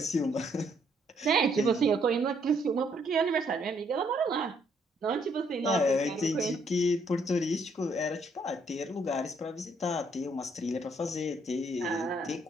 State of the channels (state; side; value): normal; both; correlation 0.69